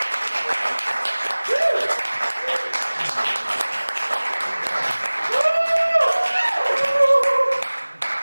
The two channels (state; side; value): inverted; both; correlation -1.00